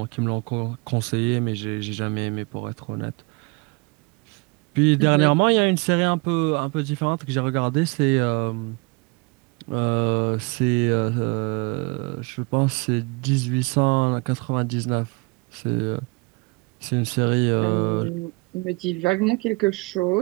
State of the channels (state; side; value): quieter; left; 28.2 dB